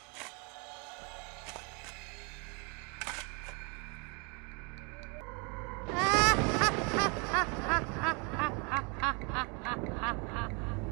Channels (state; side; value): quieter; left; 33.0 dB